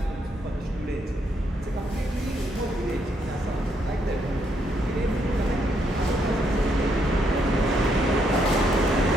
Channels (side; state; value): both; normal; correlation 0.75